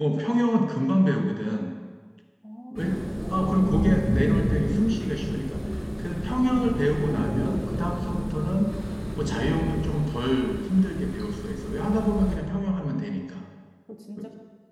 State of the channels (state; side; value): identical; both; correlation 1.00